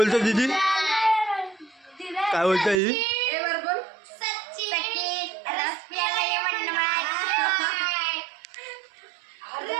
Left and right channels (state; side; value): drops out; left; at 2.8 s